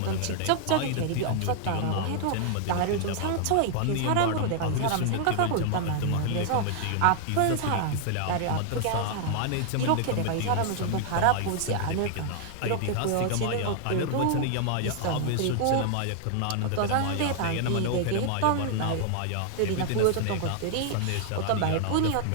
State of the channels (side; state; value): both; different; correlation 0.00